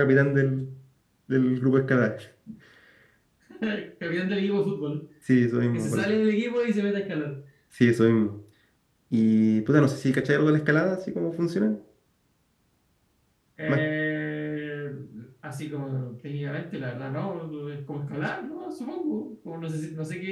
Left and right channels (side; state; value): both; identical; correlation 1.00